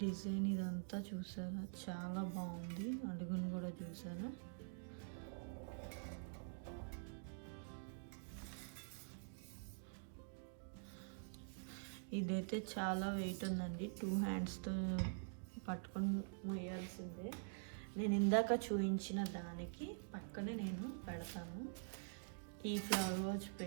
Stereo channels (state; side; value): silent; left; digital silence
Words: డిజైన్ ఇదంతా చూసారా, చాలా బాగుంది. అడుగును కూడా చూసారా. ఇదైతే చాలా వెయిట్ ఉందండి. 2 handsతో పట్టుకొని మోయాల్సిందే. నేను ఇందాక చూపించిన దానికి పక్కనే నేను పెడతాను. ఈ ఫ్లవర్స్